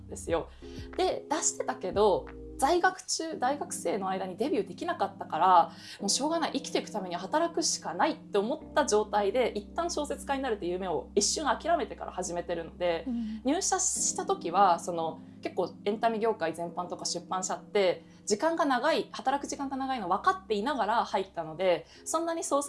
ですよ。で出してたけど在学中大学生の間にデビューできなかったから、もうしょうがない、生きていくためには働くしかないって思った状態で一旦小説家になるっていう夢を一瞬諦めてから始めてるので、入社した時は結構エンタメ業界全般とか出版社って時間が長い、働く時間が長いの分かっていながら入ったので、そんなに創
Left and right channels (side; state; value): both; identical; correlation 1.00